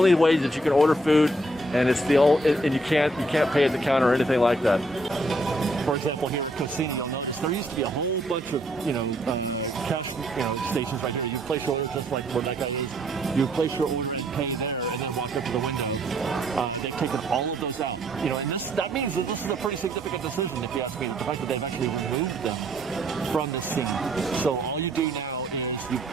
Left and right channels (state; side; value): normal; both; correlation 0.68